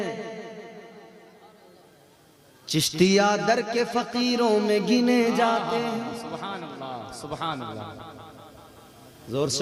चिश्तिया दर के फकीरों में गिने जाते हैं। सुभान अल्लाह, सुभान अल्लाह। जोर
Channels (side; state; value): both; identical; correlation 1.00